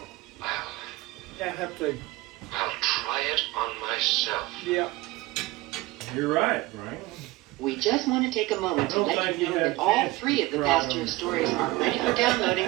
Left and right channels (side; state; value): left; quieter; 19.7 dB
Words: I have to. I'll try it on myself. Yeah. You're right, Frank. We just want to take a moment to I don't let think you you know have that all chance 3 of the to Pasteur try stories are ready for downloading